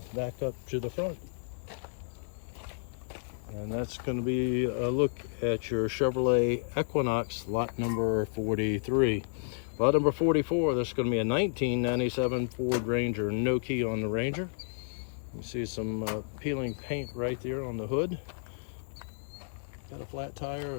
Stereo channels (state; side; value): silent; right; digital silence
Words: back up to the front. And that's going to be a look at your Chevrolet Equinox, lot number 43. Lot number 44, this is going to be a 1997 Ford Ranger, no key on the Ranger. You see some peeling paint right there on the hood. Got a flat tire.